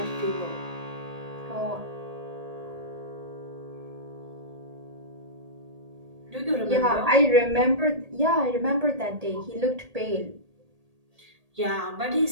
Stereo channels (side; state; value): left; late; 1.8 ms